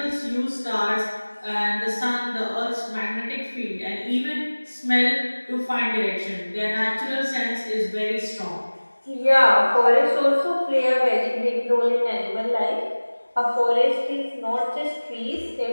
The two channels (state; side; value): inverted; both; correlation -1.00